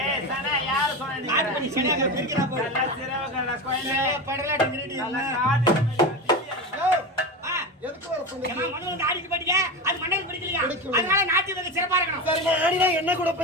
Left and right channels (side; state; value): both; normal; correlation 0.22